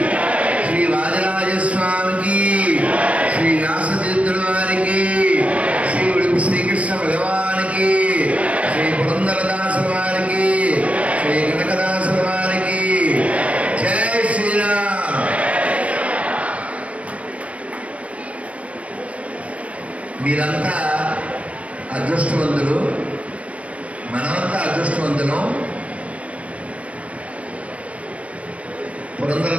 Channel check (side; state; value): left; late; 0.064 ms